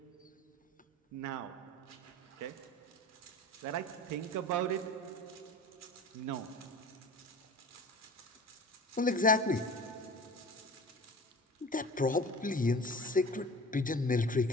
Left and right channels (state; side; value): normal; both; correlation 0.38